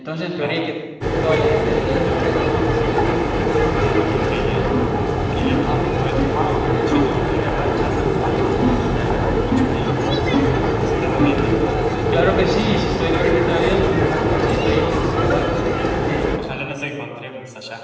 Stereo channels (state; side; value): identical; both; correlation 1.00